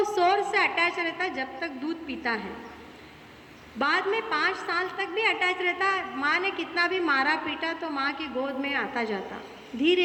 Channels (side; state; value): both; identical; correlation 1.00